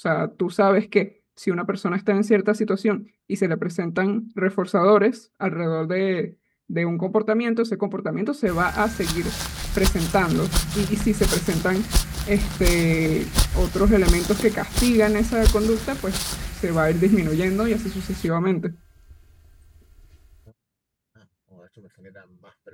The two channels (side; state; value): both; identical; correlation 1.00